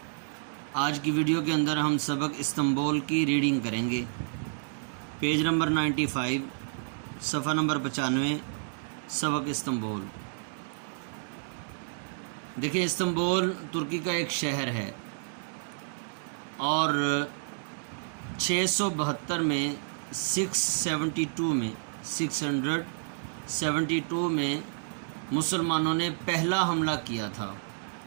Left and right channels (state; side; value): silent; left; digital silence